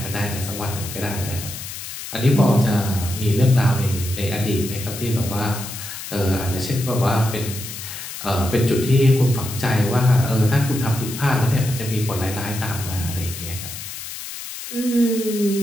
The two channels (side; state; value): left; noise; hiss, 9 dB below the sound